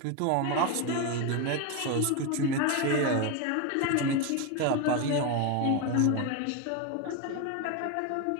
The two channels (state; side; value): different; both; correlation 0.02